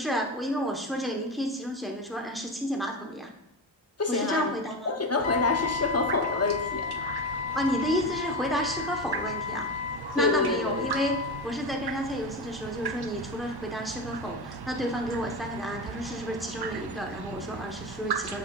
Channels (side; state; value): both; normal; correlation 0.21